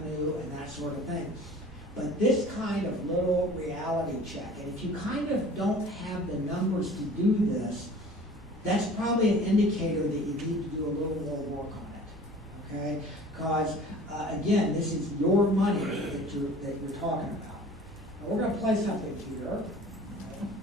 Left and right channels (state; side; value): normal; both; correlation 0.45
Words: and that sort of thing. But this kind of little reality check, and if you kind of don't have the numbers to do this, that's probably an indicator that you need to do a little more work on it, okay? Because again, this is your money that you're talking about. Now we're going to play something here.